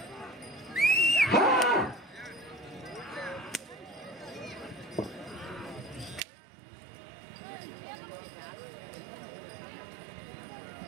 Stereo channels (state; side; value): drops out; left; at 6.2 s